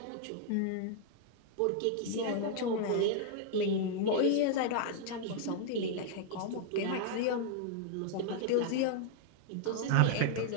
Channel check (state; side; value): different; both; correlation -0.01